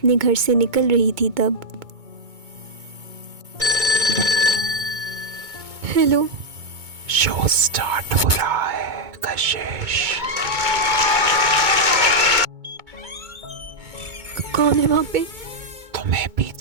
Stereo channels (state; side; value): late; left; 2.2 ms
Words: घर से निकल रही थी तब हेलो, शो स्टार्ट हो रहा है कशिश। कौन है वहाँ पे? तुम्हें